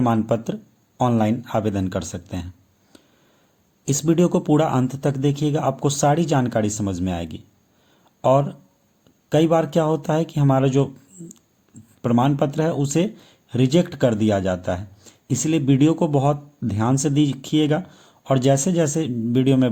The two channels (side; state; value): both; identical; correlation 1.00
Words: पत्र ऑनलाइन आवेदन कर सकते हैं। इस वीडियो को पूरा अंत तक देखिएगा, आपको सारी जानकारी समझ में आएगी। और कई बार क्या होता है कि हमारा जो प्रमाण पत्र है उसे रिजेक्ट कर दिया जाता है, इसलिए वीडियो को बहुत ध्यान से देखिएगा और जैसे जैसे वीडियो में